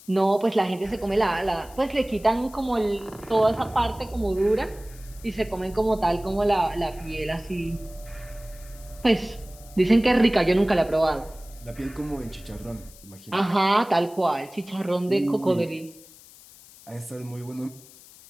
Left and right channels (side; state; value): left; noise; hiss, 22 dB below the sound